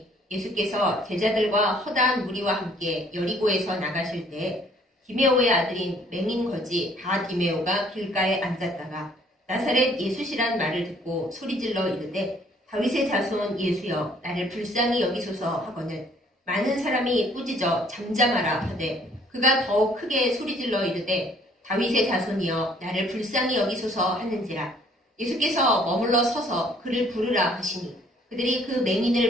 예수께서 제자들과 허다한 무리와 함께 여리고에서 나가실 때 디메오의 아들인 맹인 거지 바디메오가 길가에 앉았다가 나사렛 예수시란 말을 듣고 소리질러 이르되 다윗의 자손 예수여 나를 불쌍히 여기소서 하거늘 많은 사람이 꾸짖어 잠잠하라 하되 그가 더욱 크게 소리질러 이르되 다윗의 자손이여 나를 불쌍히 여기소서 하는지라. 예수께서 머물러 서서 그를 부르라 하시니 그들이 그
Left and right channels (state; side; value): normal; both; correlation 0.60